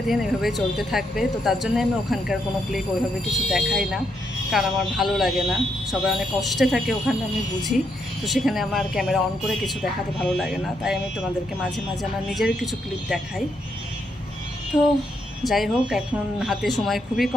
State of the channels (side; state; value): both; normal; correlation 0.78